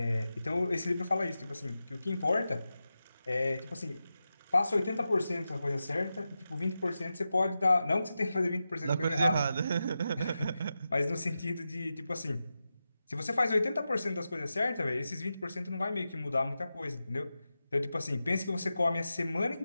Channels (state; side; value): inverted; both; correlation -0.91